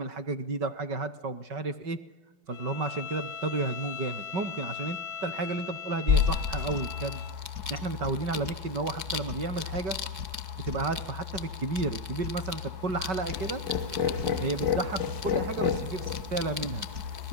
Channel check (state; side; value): late; left; 4.7 ms